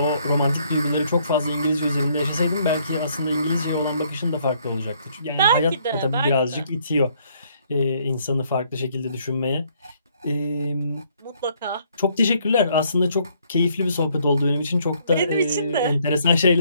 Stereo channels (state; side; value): inverted; both; correlation -0.67